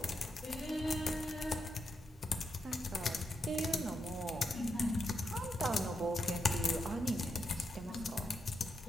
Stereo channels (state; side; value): normal; both; correlation 0.83